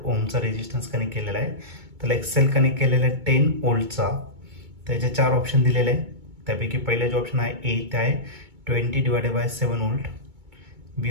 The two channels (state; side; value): late; left; 2.2 ms